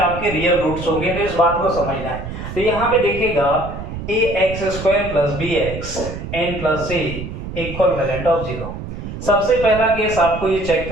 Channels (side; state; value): right; noise; rumble, 8 dB below the sound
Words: रियल रूट्स होंगे, तो इस बात को समझना है। तो यहाँ पे देखिएगा ax² + bx n + c = valued of 0। सबसे पहला केस आपको ये चेक